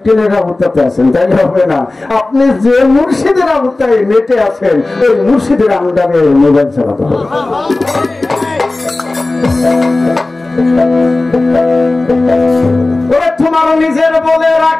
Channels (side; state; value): right; quieter; 3.1 dB